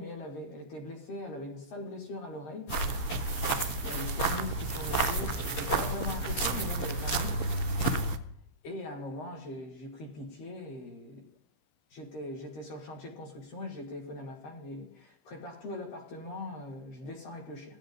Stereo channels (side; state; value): right; late; 15 ms